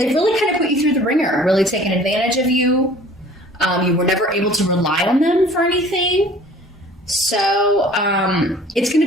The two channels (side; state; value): both; normal; correlation 0.49